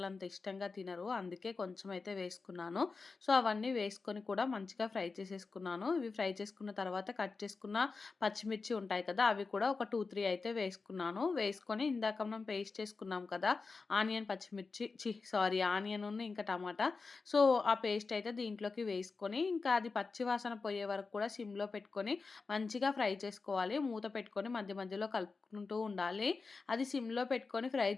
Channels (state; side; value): quieter; right; 4.3 dB